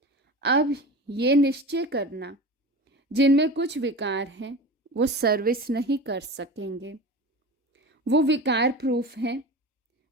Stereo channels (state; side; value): normal; both; correlation 0.31